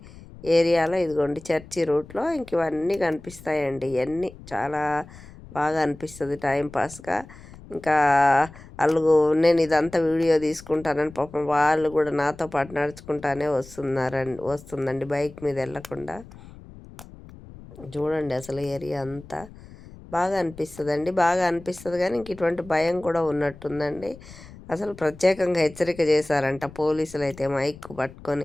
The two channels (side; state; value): left; noise; rumble, 19 dB below the sound